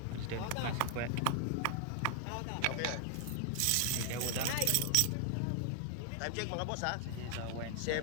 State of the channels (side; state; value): both; different; correlation 0.00